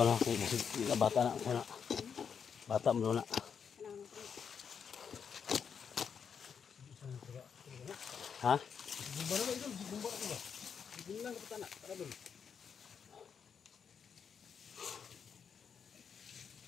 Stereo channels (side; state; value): right; quieter; 6.9 dB